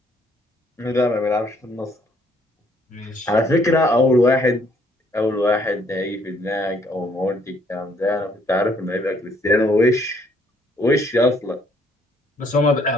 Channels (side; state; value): both; normal; correlation 0.66